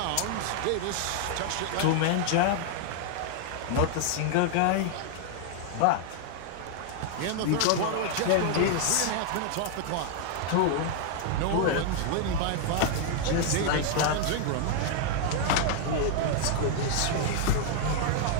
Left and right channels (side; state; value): both; different; correlation 0.00